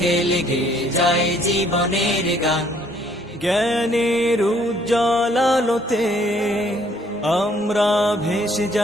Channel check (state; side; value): normal; both; correlation 0.63